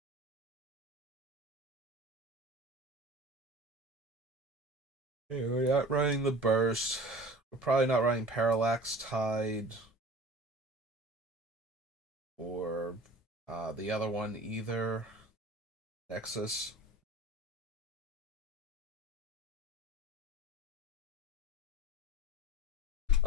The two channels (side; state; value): both; normal; correlation 0.40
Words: Yeah, we're not running the burst. We're probably not running Parallax Tide or the other one either. Nexus.